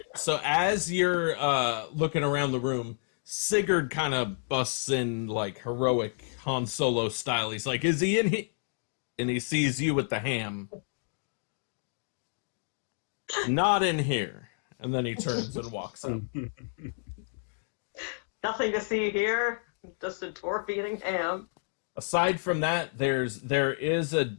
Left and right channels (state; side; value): silent; right; digital silence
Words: so as you're looking around the room, Sigurd kind of busts in like heroic Han Solo style. He's like, "Is he in here?" And he sees you with the ham. Not in here. And then he turns and walks up. Nothing to see here. Just a dwarf eating ham. Aside from that, there is a